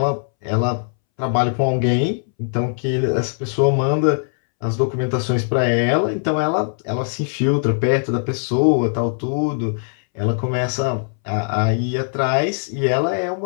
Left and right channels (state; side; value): silent; right; 64 dB below the other